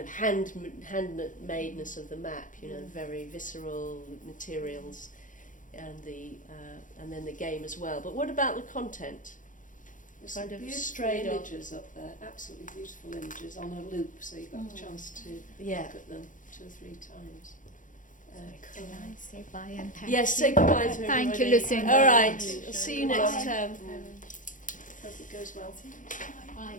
of handmadeness of the map, you know, very visceral materials, and then the game as well. But what about the content? There's Kind some of beautiful straight off. images up there, absolutely beautiful images on a loop, so you got the chance to Yeah. look at them 2 or 3 times. Can I say bye and thank Yes, you? say goodbye to Thank you, everybody. Lucinda. All right, I'll see you next term. Hope it goes well. Bye.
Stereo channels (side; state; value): right; late; 0.38 ms